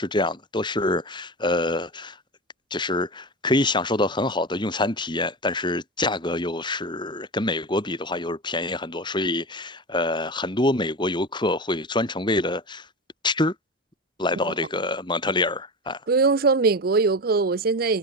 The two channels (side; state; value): both; normal; correlation 0.24